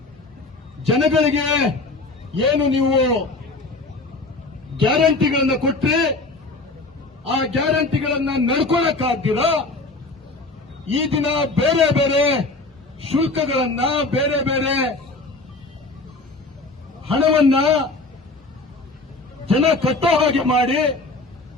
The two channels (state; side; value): quieter; right; 3.3 dB